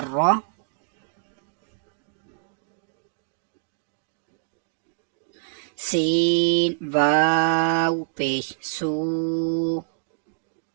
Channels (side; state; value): left; silent; digital silence